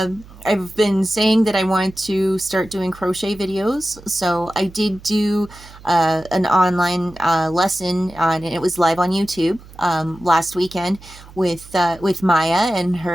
been saying that I want to start doing crochet videos, so I did do an online lesson, and it was live on YouTube last weekend with Maya and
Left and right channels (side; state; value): right; noise; hum, 20 dB below the sound